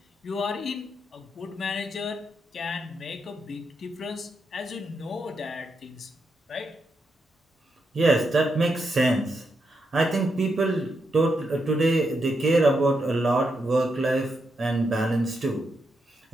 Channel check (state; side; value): normal; both; correlation 0.82